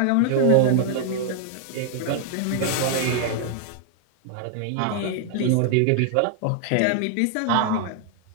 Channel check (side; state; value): both; different; correlation 0.00